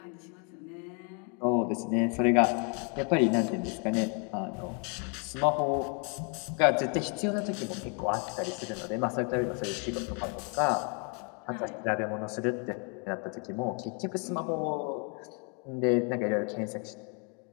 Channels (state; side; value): quieter; right; 37.4 dB